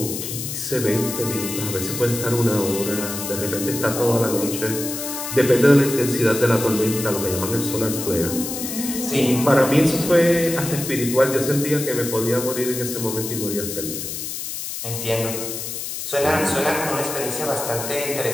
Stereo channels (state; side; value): noise; left; hiss, 6 dB below the sound